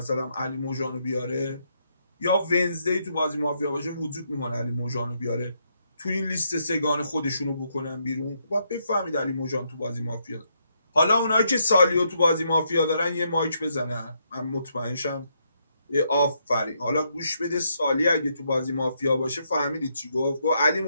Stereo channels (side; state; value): both; inverted; correlation -0.77